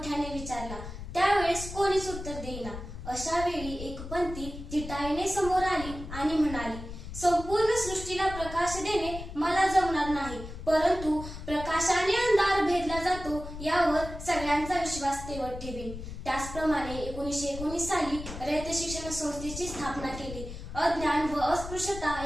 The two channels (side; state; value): left; noise; rumble, 10 dB below the sound